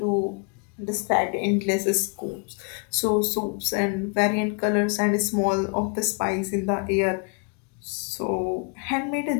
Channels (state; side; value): quieter; right; 35.6 dB